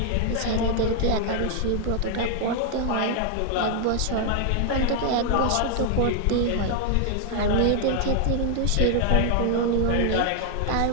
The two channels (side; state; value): both; different; correlation 0.00